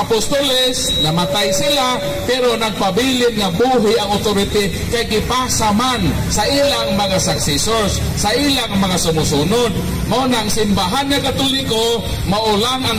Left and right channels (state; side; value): identical; both; correlation 1.00